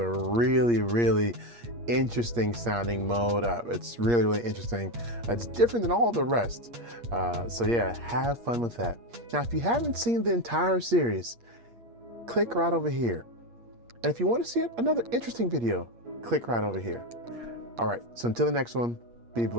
really interesting sounding mode. It's really interesting. It's different than all the rest. So yeah, have fun with that. Now, if you haven't seen the entire series, click right over here. And if you want to see another interesting video, click right over here. All right, so until the next one, be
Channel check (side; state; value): left; late; 8.5 ms